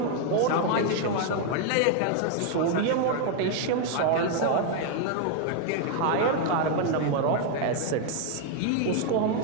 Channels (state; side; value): different; both; correlation 0.00